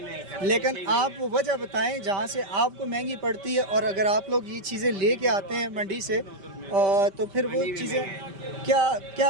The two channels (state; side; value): late; left; 5.1 ms